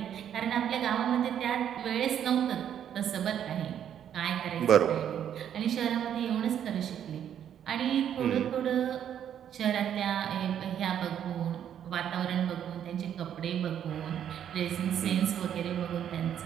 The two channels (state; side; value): quieter; left; 9.6 dB